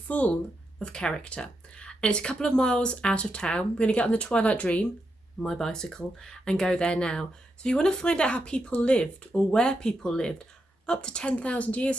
of character. And it's a couple of miles out of town. We're going to get on the Twilight Dream, my bicycle, and go there now. So if you want to find out how people lived or where people lived up to 10,000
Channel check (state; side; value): normal; both; correlation 0.84